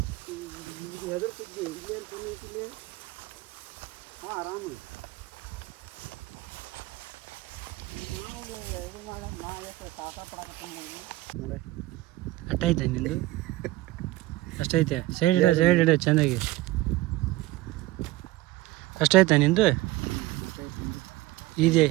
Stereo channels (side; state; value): left; quieter; 18.4 dB